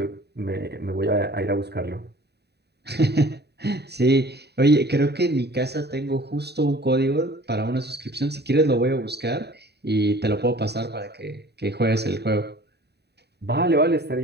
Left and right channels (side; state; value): left; late; 0.48 ms